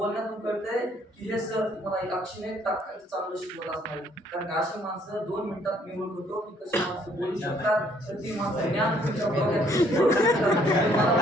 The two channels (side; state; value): both; normal; correlation 0.64